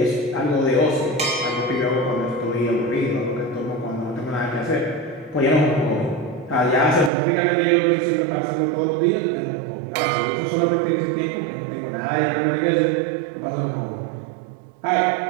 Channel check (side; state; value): left; drops out; at 7.1 s